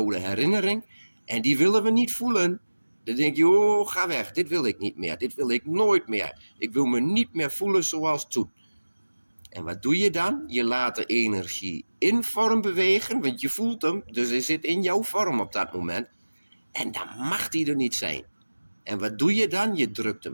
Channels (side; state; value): both; inverted; correlation -1.00